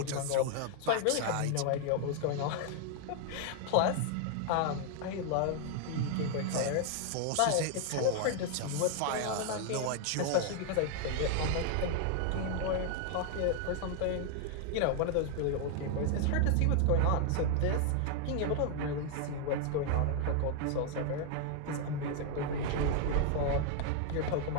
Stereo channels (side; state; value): both; different; correlation 0.00